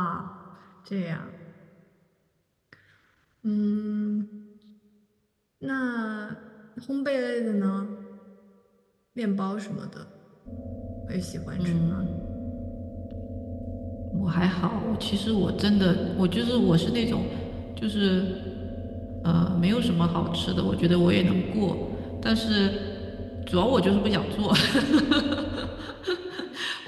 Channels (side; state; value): both; identical; correlation 1.00